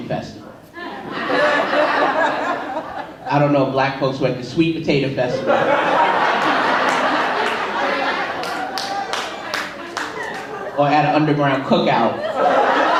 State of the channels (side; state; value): both; identical; correlation 1.00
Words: festival. I don't know if black folks were at the sweet potato festival. Or at an underground cookout.